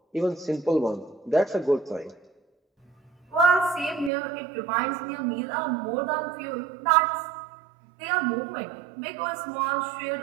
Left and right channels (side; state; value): left; drops out; at 4.1 s